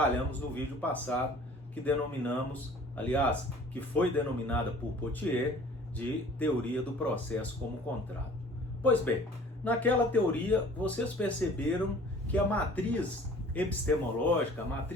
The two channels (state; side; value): normal; both; correlation 0.49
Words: no vídeo passado, que denominamos, aliás, que foi denominada por Pottier de teoria do processo como contrato. Pois bem, naquela teoria vocês perceberam que a matriz epistemológica, a